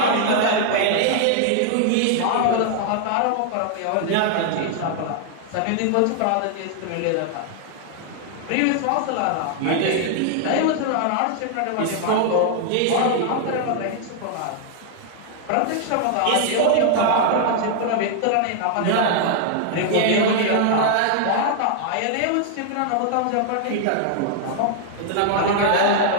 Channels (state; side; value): different; both; correlation 0.00